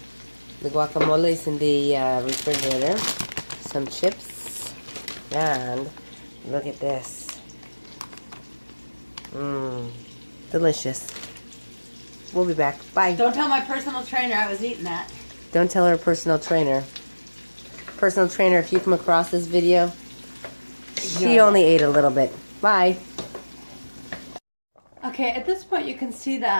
The guacamole is in the refrigerator. Some chips. And look at this. Delicious. We'll be back. Bye. Don't tell my personal trainer I was eating that. Don't tell her personal trainer. Personal trainer, if you come across this video, she only ate a little bit. Bye. Okay, at this point you can see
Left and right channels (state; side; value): inverted; both; correlation -1.00